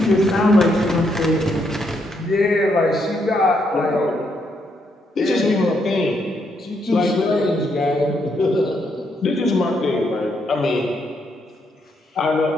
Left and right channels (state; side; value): normal; both; correlation 0.76